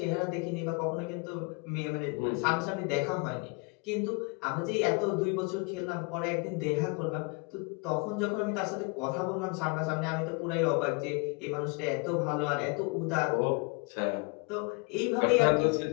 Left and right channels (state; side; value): quieter; right; 30.8 dB